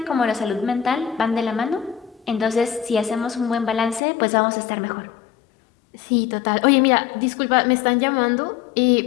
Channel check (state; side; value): drops out; right; at 4.0 s